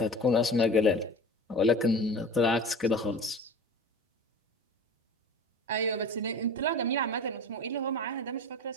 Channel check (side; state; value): both; normal; correlation 0.36